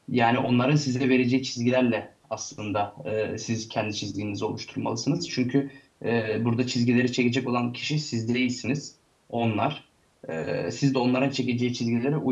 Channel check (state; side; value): identical; both; correlation 1.00